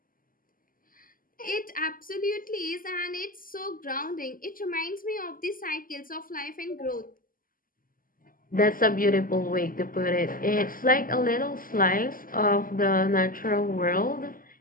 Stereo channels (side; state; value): right; late; 0.41 ms